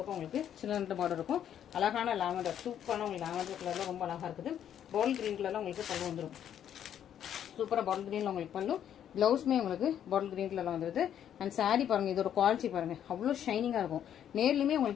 உங்களுக்கு சின்ன பார்டர் இருக்கும். அழகான லாவெண்டர் சூப்பரான உங்களுக்கு லாவெண்டர் கலர்ல ரொம்ப அழகா இருக்குது. பால் கிரீன் கலர்ல உங்களுக்கு பல்லு வந்துடும். சூப்பரா பாட்டில் கிரீன்ல உங்களுக்கு பல்லு. பிளவுஸ்மே உங்களுக்கு பாட்டில் கிரீன் கலர்ல வந்துருது. அண்ட் சாரி பாருங்க, இதோட குவாலிட்டி பாருங்க, அவ்வளோ ஷைனிங்கா இருக்கும். நேர்லயுமே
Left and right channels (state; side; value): quieter; right; 9.8 dB